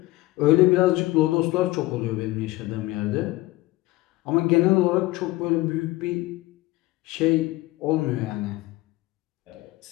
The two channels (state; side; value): quieter; right; 19.1 dB